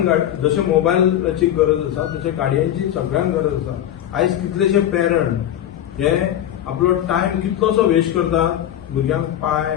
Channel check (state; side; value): quieter; right; 11.4 dB